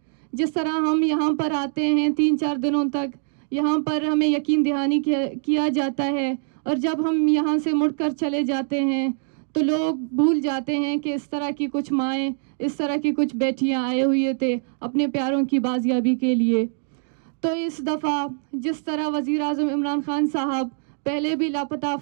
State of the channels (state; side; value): silent; left; 63 dB below the other